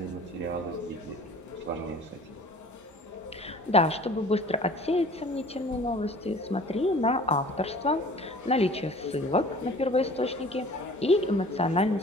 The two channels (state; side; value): normal; both; correlation 0.47